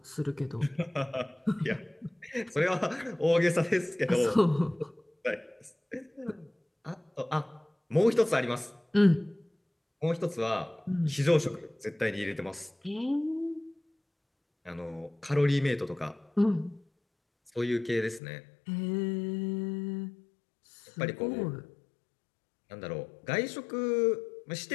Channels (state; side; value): drops out; right; at 18.2 s